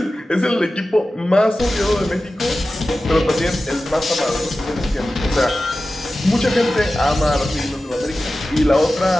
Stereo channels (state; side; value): normal; both; correlation 0.94